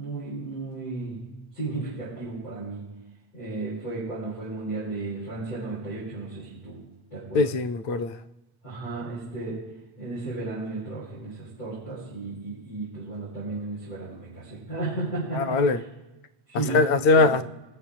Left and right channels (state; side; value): late; right; 9.0 ms